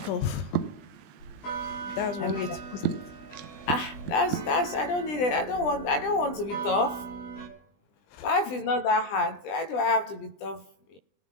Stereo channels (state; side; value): late; right; 20 ms